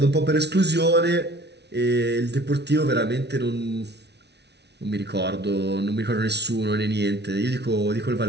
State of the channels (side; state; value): left; late; 0.50 ms